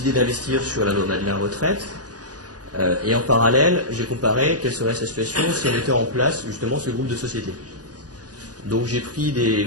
d'investir sur la loi Madelin retraite. Et en parallèle, j'ai comparé quelle serait sa situation si on mettait en place justement ce groupe de sociétés. Donc j'ai pris des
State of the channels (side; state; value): left; late; 0.68 ms